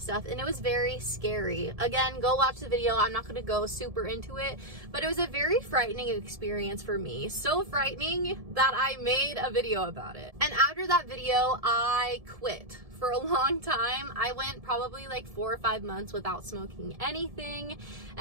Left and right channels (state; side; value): late; left; 1.7 ms